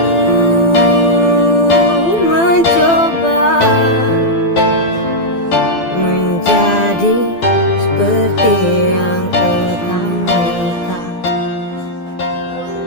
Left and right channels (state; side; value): late; right; 12 ms